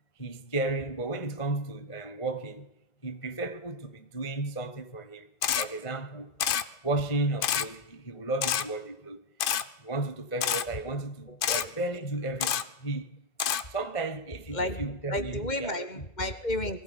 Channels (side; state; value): right; late; 2.4 ms